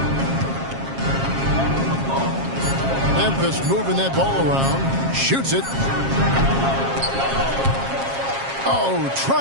Memphis moving that ball around. Shoots it. Oh,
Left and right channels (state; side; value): late; left; 7.4 ms